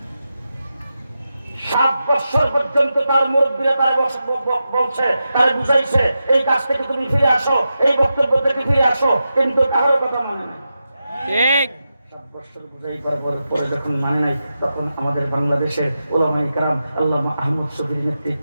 7 বছর পর্যন্ত তার মুরব্বীরা তার বলছে, তার বুঝাইছে এই কাজ থেকে তুমি ফিরে আসো, এই বক্তব্য থেকে ফিরে আসো, কিন্তু কারোর কথা মানে না। ঠিক। 7 বছর বুঝাইবার পরে যখন মানে নাই, তখন আমাদের বাংলাদেশের উলামায়ে কেরাম আল্লামা আহমদ শফীর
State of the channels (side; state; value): both; inverted; correlation -0.90